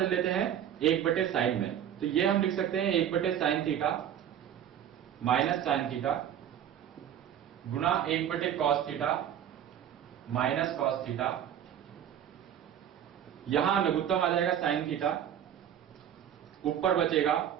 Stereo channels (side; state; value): left; quieter; 9.9 dB